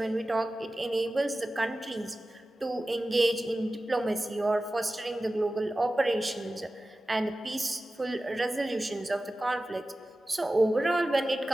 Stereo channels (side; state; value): both; normal; correlation 0.95